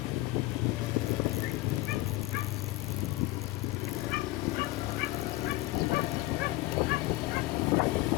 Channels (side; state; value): right; quieter; 18.6 dB